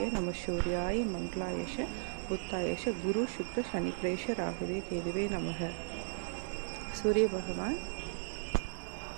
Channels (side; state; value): left; silent; 54 dB below the other